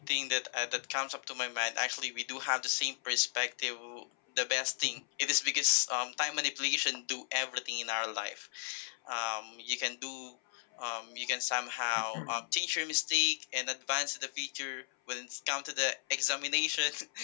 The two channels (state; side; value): silent; right; 54 dB below the other